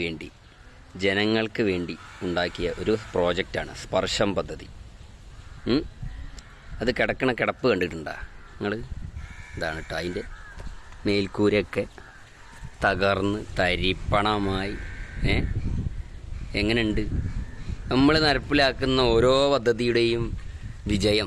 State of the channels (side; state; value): both; identical; correlation 1.00